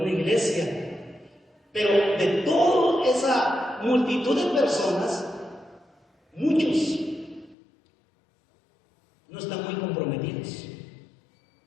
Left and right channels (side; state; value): right; drops out; at 7.6 s